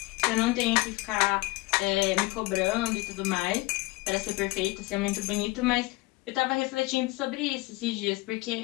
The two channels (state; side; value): quieter; right; 22.0 dB